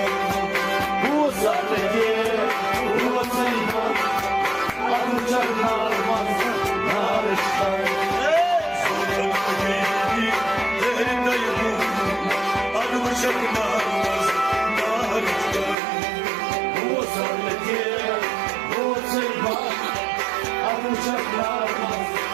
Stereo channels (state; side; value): drops out; left; at 15.8 s